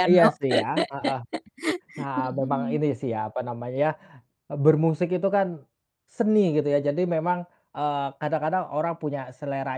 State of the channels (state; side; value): identical; both; correlation 1.00